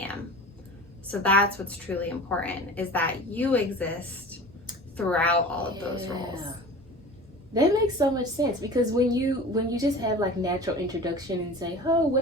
am. So that's what's truly important, is that you exist throughout all of those roles. That makes so much sense, because when you just have like natural introduction and say, oh, what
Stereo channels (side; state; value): both; normal; correlation 0.37